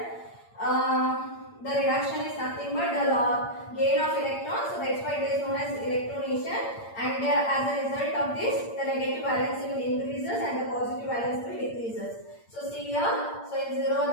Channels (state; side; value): late; right; 8.7 ms